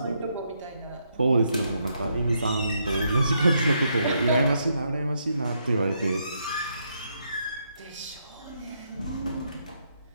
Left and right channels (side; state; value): both; inverted; correlation -0.77